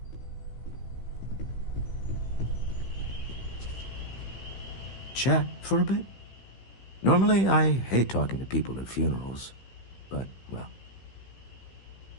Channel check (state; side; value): late; right; 16 ms